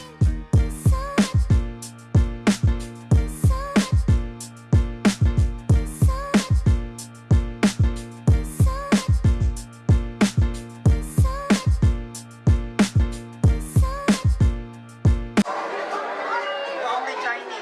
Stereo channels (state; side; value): identical; both; correlation 1.00